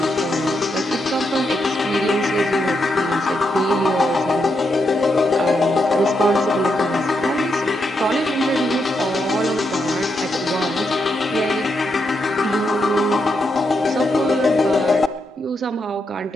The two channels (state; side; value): normal; both; correlation 0.82